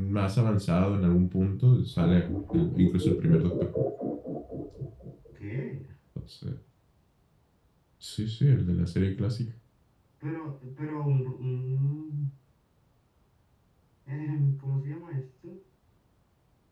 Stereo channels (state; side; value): identical; both; correlation 1.00